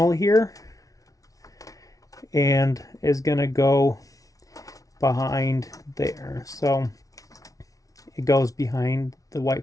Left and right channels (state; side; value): late; right; 0.17 ms